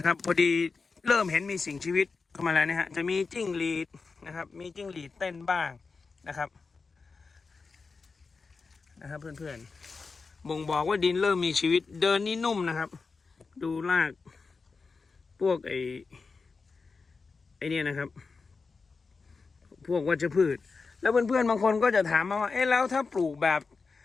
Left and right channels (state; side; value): quieter; right; 4.5 dB